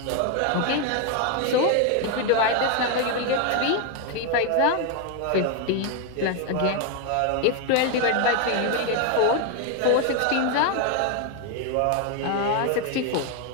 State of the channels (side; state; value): both; different; correlation 0.01